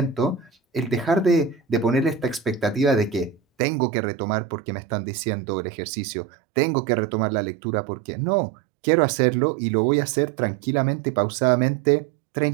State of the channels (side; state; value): left; drops out; at 3.4 s